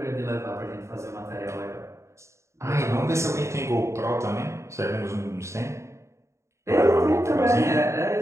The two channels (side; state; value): left; late; 0.14 ms